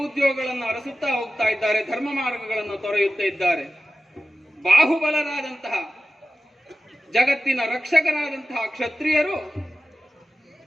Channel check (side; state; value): both; normal; correlation 0.94